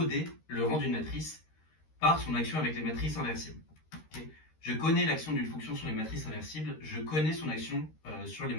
le rang d'une matrice par son action avec les matrices inversibles. Okay. Je connais l'action d'une fonction sur les matrices inversibles, je connais son action sur les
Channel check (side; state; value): right; late; 13 ms